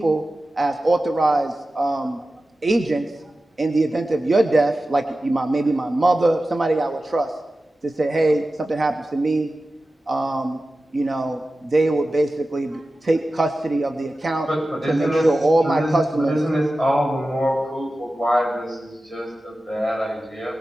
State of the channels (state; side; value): normal; both; correlation 0.95